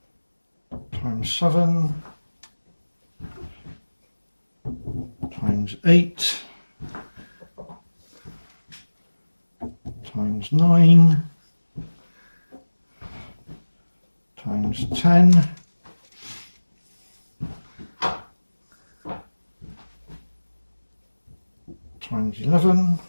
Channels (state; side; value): inverted; both; correlation -1.00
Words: Times 7. Times 8. Times 9. Times 10. Times 11.